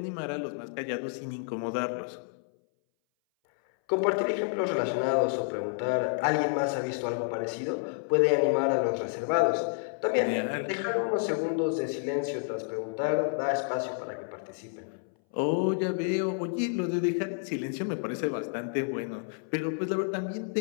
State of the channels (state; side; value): silent; right; 58 dB below the other